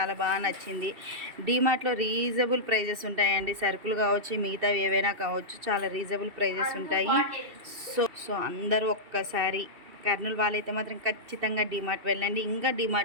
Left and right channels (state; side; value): late; left; 2.7 ms